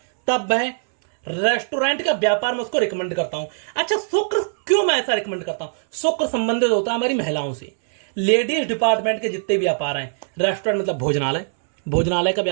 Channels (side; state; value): left; silent; 65 dB below the other